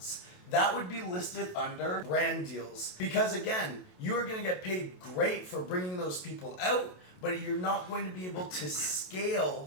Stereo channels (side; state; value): right; late; 27 ms